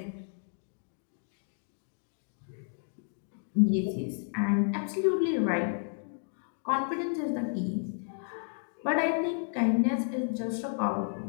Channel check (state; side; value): silent; right; 56 dB below the other